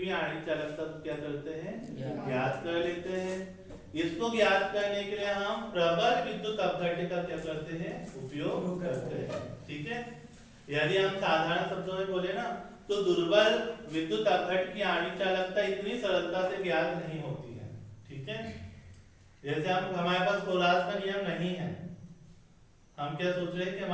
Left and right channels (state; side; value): identical; both; correlation 1.00